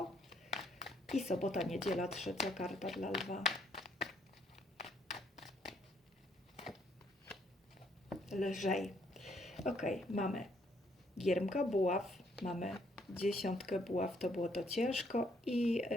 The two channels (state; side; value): normal; both; correlation 0.69